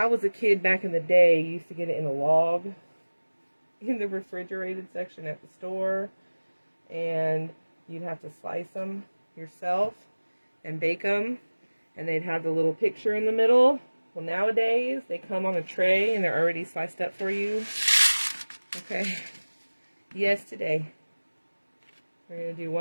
was a kid back in the day, you used to get it in a log in the refrigerated section at the store. And you'd have to slice them yourself and bake them. And they'd have the little picture in the middle. Well, nowadays, they come on a tray and they're already sliced up for you. Okay. Yes, today. We're going to do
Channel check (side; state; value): both; inverted; correlation -1.00